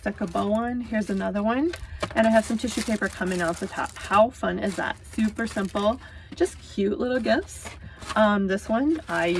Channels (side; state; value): both; identical; correlation 1.00